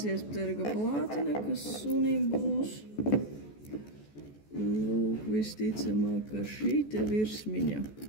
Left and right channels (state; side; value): late; right; 14 ms